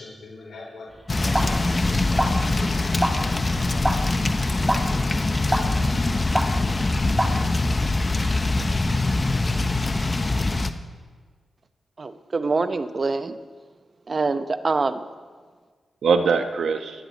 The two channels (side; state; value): both; normal; correlation 0.93